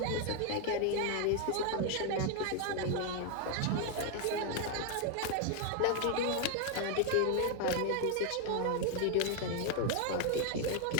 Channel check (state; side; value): different; both; correlation 0.00